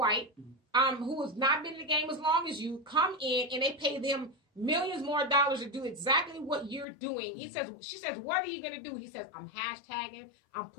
who has not been in the game as long as you, come in and they pay them millions more dollars to do exactly what you're doing. She says, what are you going to do? He says, I'm hashtagging, I'm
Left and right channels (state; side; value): drops out; right; at 6.9 s